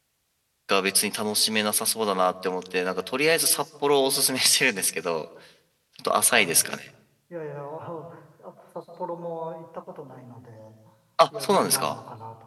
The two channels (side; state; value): both; identical; correlation 1.00